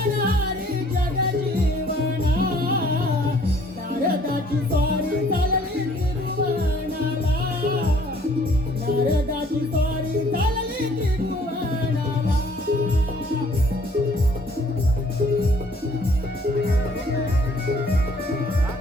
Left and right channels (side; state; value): both; normal; correlation 0.59